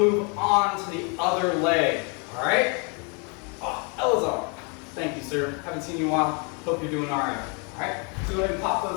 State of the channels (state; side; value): quieter; right; 34.7 dB